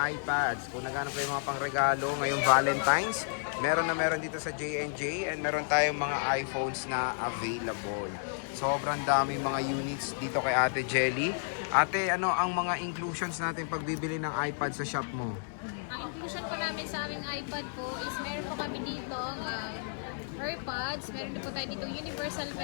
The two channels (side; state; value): right; silent; 57 dB below the other